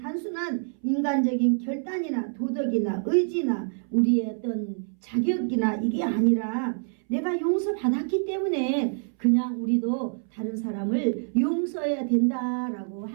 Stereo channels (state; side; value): silent; left; 61 dB below the other